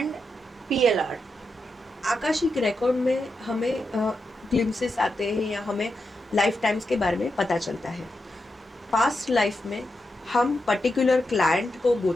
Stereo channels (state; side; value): normal; both; correlation 0.87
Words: PLR? Akashic record में हमें ग्लिम्सेस आते हैं या हमें लाइफ टाइम्स के बारे में पता चलता है। पास्ट लाइफ में हम पर्टिकुलर क्लाइंट को गो